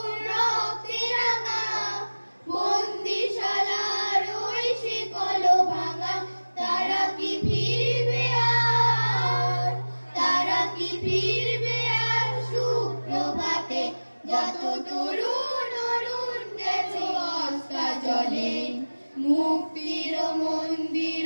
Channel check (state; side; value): inverted; both; correlation -1.00